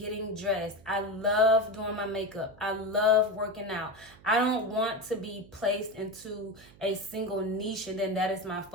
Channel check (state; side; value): noise; right; hum, 23 dB below the sound